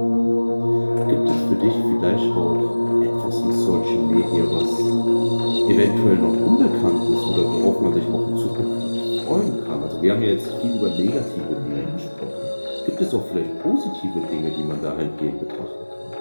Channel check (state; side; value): inverted; both; correlation -1.00